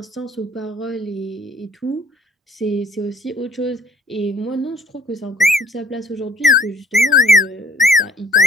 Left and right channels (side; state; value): both; normal; correlation 0.58